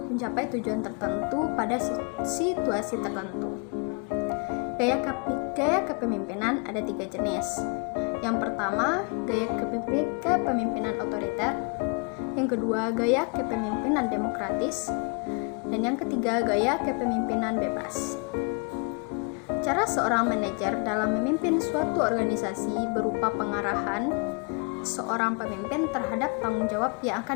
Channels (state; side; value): quieter; right; 35.7 dB